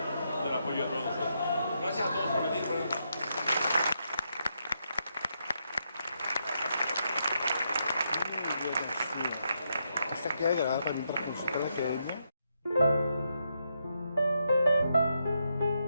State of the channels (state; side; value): inverted; both; correlation -0.81